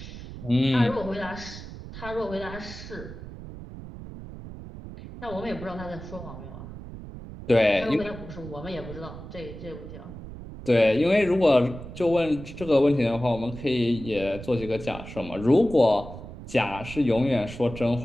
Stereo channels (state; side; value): noise; right; rumble, 12 dB below the sound